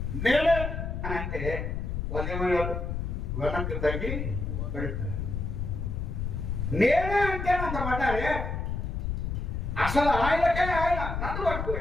నేనే అని అంటే వాళ్ళు ఏమయ్యారు? వెనక్కి తగ్గి పెడతారు. నేనే అంటే అంత పడ్డారే. అసలు ఆయనకే ఆయన నన్ను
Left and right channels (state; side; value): noise; left; rumble, 3 dB below the sound